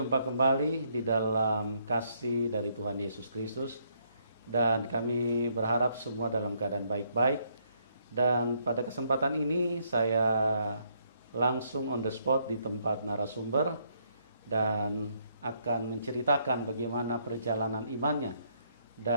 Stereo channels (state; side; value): inverted; both; correlation -0.72